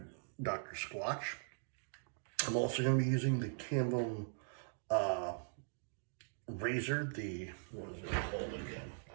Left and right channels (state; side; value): silent; left; digital silence